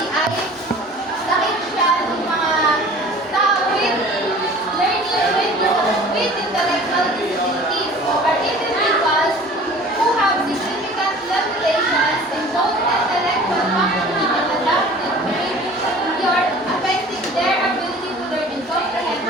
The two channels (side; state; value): both; normal; correlation 0.45